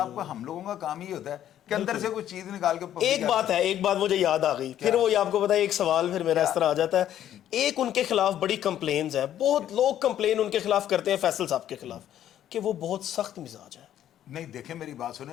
کو, ہم لوگوں کا کام یہ ہوتا ہے کہ اندر سے کوئی چیز نکال کے. ایک بات ہے, ایک بات مجھے یاد آ گئی, پھر وہ آپ کو پتا ہے ایک سوال پھر میرا اس طرح آ جاتا ہے. ایک ان کے خلاف بڑی کمپلینز ہیں, بہت لوگ کمپلین ان کے خلاف کرتے ہیں فیصل صاحب کے خلاف, کہ وہ بہت سخت مزاج ہے. نہیں دیکھیں میری بات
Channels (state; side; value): quieter; right; 11.2 dB